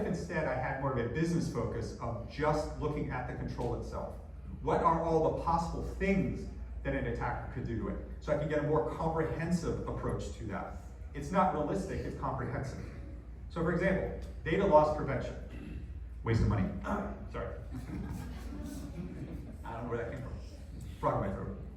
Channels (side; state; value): both; identical; correlation 1.00